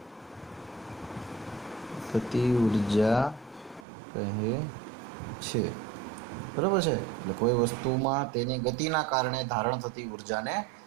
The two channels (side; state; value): left; drops out; at 3.9 s